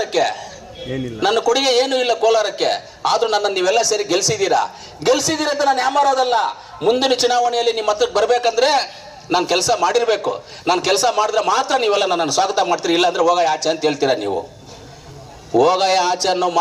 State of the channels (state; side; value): identical; both; correlation 1.00